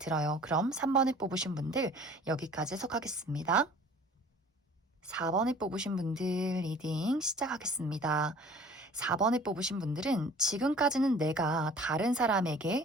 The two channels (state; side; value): normal; both; correlation 0.48